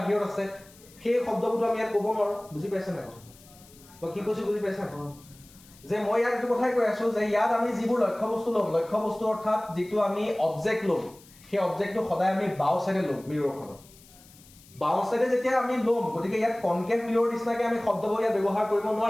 আছে সেই শব্দবোৰটো আমি ইয়াত ক'ব নোৱাৰো বুজি পাইছা নাই কথা মই কি কৈছো বুজি পাইছা যে মই ইয়াত এইটো কথাই কৈ আছো যে ইয়াত আমি যিবোৰ লক্ষ্য বস্তু ল'ম লক্ষ্য বস্তু অৰ্থাৎ যিটো আমি অবজেক্ট ল'ম সেই অবজেক্টটো সদায় আমি বাও সাইডে ল'ম মিৰৰখনত বাও সাইডে যেতিয়া আমি ল'ম গতিকে ইয়াত কনকেভ মিৰৰ নিচিনাকে আমি শব্দবোৰ ইয়াত ব্যৱহাৰ কৰিব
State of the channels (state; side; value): noise; left; hiss, 24 dB below the sound